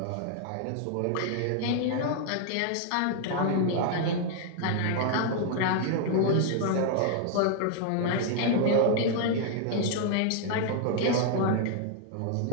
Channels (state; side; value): different; both; correlation 0.00